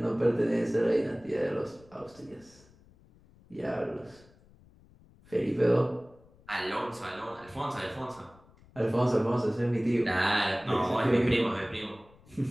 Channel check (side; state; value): left; noise; rumble, 27 dB below the sound